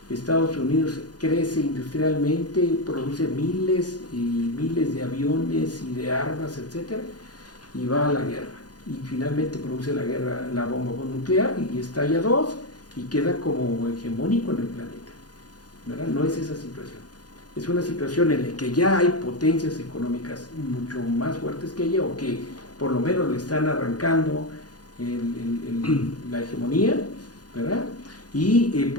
Estados Unidos crece industrialmente, produce miles y miles de aviones y de armas, etcétera, y va a la guerra. Y finalmente produce la bomba nuclear, y estalla 2, y queda como hegemónico en el planeta, ¿verdad? No es esa situación. Es una situación en la que ya hay potencias económicas mucho más fuertes que ella, o que por lo menos le están arrancando la hegemonía, ¿verdad? Y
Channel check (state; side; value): late; right; 0.69 ms